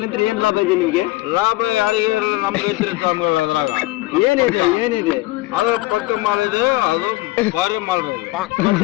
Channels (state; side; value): quieter; right; 19.1 dB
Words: ಏನ್ ಲಾಭ ಇದೆ ನಿಮ್ಗೆ? ಲಾಭ ಯಾರಿಗೆ ನಮ್ಗೆ ಐತ್ರಿ ಸ್ವಾಮಿಗಳು. ಅದ್ರಾಗ ಏನಿದೆ ಅದು ಪಕ್ಕ ಮಾಡಿದೆ, ಅದು ಬಾರಿ ಮಾಡ್ಬೋದು. ಮತ್ತೆ